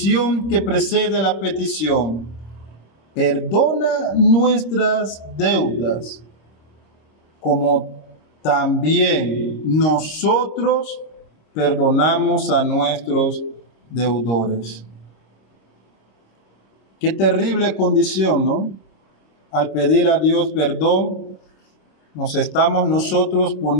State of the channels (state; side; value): late; right; 26 ms